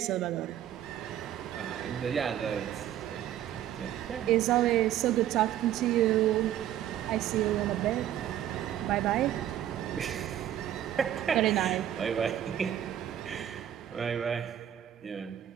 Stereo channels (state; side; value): quieter; left; 11.4 dB